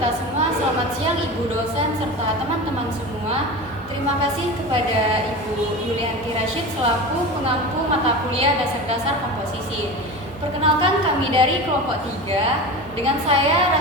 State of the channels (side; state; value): both; normal; correlation 0.29